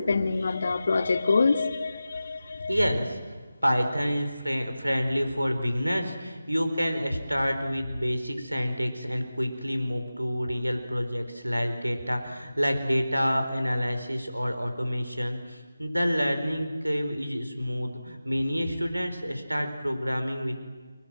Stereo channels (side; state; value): both; inverted; correlation -0.95